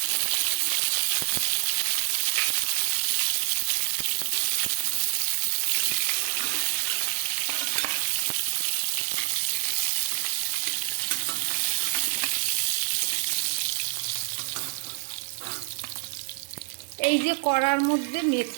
এই যে কড়ার মধ্যে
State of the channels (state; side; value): silent; left; digital silence